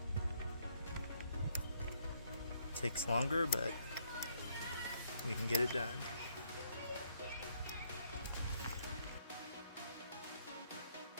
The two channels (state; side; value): inverted; both; correlation -0.69